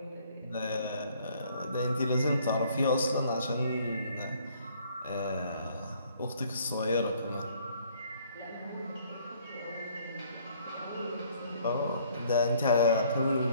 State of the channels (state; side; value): inverted; both; correlation -0.61